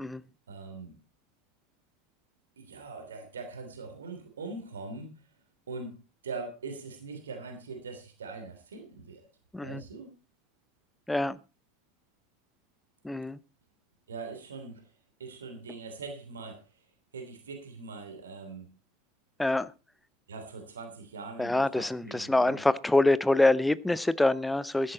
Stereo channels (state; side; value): normal; both; correlation 0.89